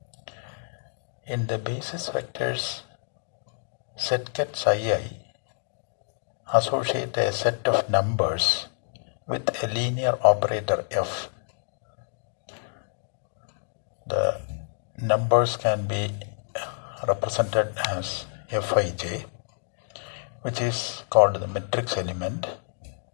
In the basis vectors set ket psi I, associate a set of numbers with a linear operator f. The numbers can be represented as Fij, which is called the matrix element,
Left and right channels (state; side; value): silent; right; digital silence